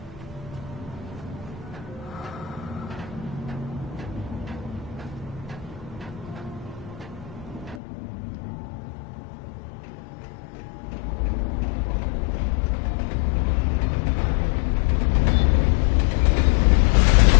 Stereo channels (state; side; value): drops out; right; at 7.8 s